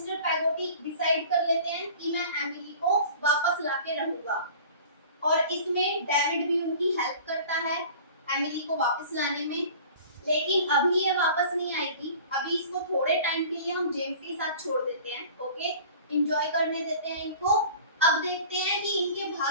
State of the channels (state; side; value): inverted; both; correlation -0.43